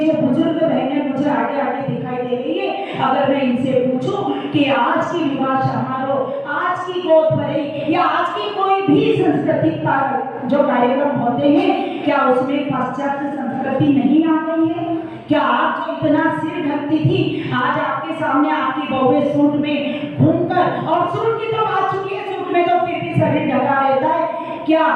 बुजुर्ग बहनें मुझे आगे आगे दिखाई दे रही है, अगर मैं इनसे पूछूं कि आज की विवाह समारोह, आज की गोद भराई या आज की कोई भी सांस्कृतिक जो कार्यक्रम होते हैं, क्या उसमें पाश्चात्य संस्कृति नहीं आ गई है? क्या आप जो इतना सिर ढकती थी, आज आपके सामने आपकी बहुएं सूट में घूमकर, और सूट की तो बात चुकी है, सूट में तो फिर भी शरीर ढका रहता है, क्या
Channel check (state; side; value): identical; both; correlation 1.00